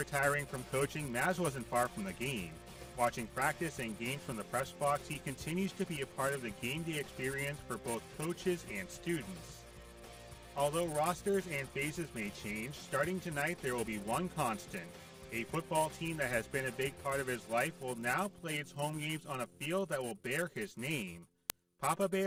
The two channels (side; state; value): both; identical; correlation 1.00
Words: from coaching, Maz wasn't far from the game. Watching practice and games from the press box, he continues to be a part of the game day experience for both coaches and students. Although rosters and phases may change, starting tonight there will be one constant. A football team that has been a big part of his life will now play its home games on a field that will bear his name. Papa